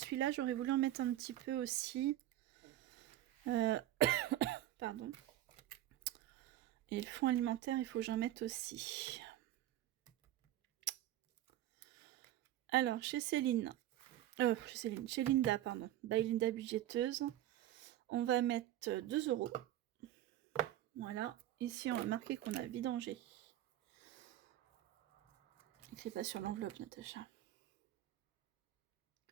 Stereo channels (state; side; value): quieter; left; 13.4 dB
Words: j'aurais voulu en mettre un petit peu aussi. Pardon. Et le fonds alimentaire, il faut que j'en mette aussi. Alors, chez Linda, pardon. By Linda budgéteuse. On va mettre 2 €. Voilà. Ici, on va marquer qu'on a vidangé. Écris pas sur l'enveloppe, Natacha.